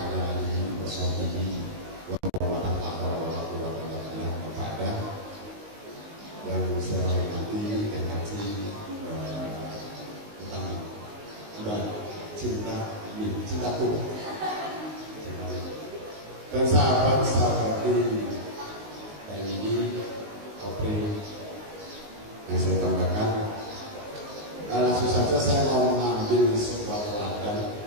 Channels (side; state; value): left; late; 19 ms